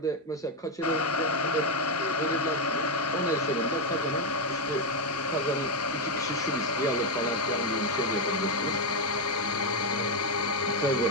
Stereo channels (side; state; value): both; normal; correlation 0.06